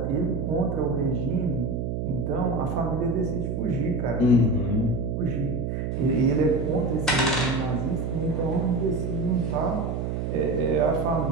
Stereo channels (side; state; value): right; noise; hum, 2 dB below the sound